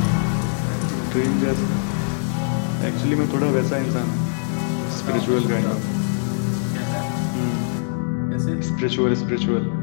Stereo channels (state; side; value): silent; right; digital silence